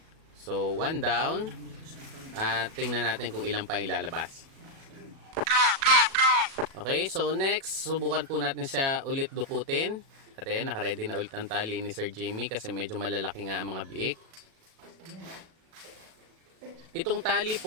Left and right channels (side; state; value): left; late; 37 ms